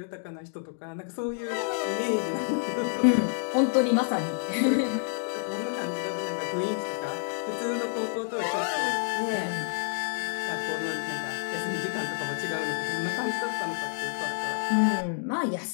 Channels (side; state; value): right; silent; digital silence